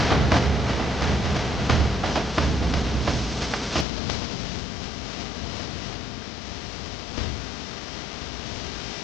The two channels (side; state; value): right; drops out; at 3.9 s